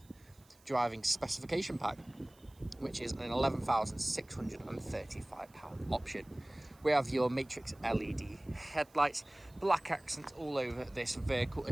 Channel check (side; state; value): right; noise; hiss, 29 dB below the sound